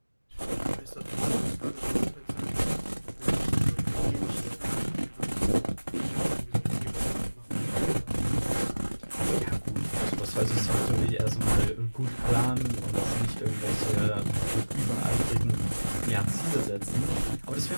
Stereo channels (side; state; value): both; inverted; correlation -1.00